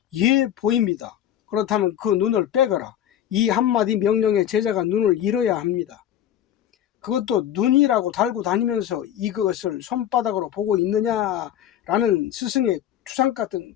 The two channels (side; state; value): right; quieter; 10.8 dB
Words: 예, 보입니다. 그렇다면 그 눈을 빼거라. 이 한마디 명령에 제자가 눈을 잃어야 합니다. 그것도 눈이라고 달고 다니면서 이것을 손바닥으로 보고 있느냐라는 스승의 추상 같은